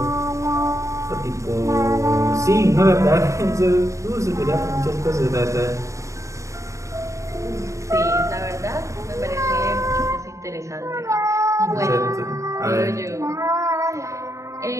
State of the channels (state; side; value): late; left; 0.15 ms